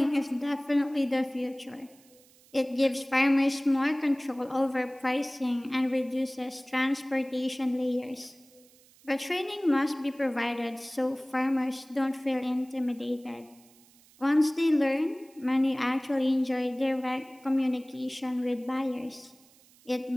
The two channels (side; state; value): right; noise; hiss, 28 dB below the sound